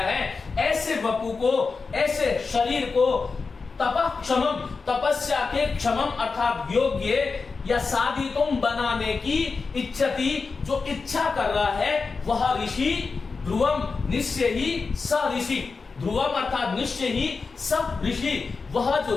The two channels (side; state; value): right; quieter; 4.5 dB